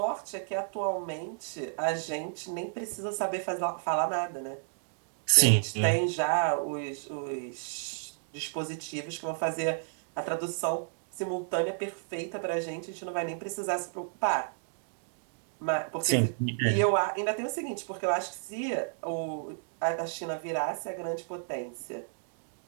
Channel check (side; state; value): left; silent; digital silence